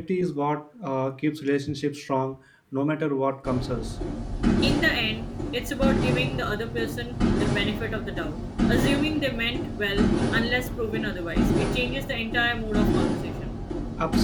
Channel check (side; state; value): both; identical; correlation 1.00